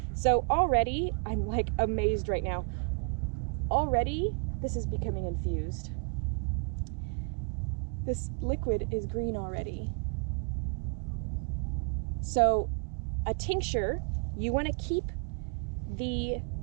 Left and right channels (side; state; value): left; quieter; 38.2 dB